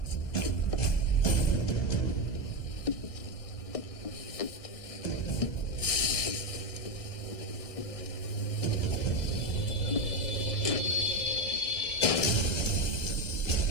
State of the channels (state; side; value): late; right; 1.6 ms